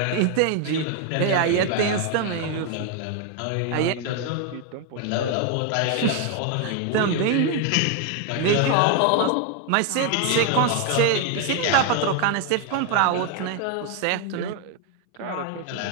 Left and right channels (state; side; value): different; both; correlation 0.01